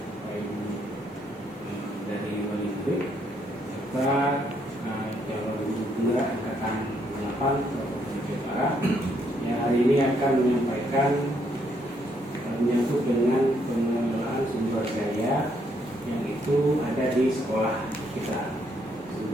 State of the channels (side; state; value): both; normal; correlation 0.72